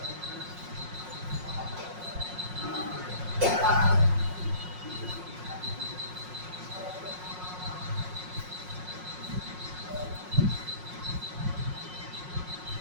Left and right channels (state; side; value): late; left; 5.5 ms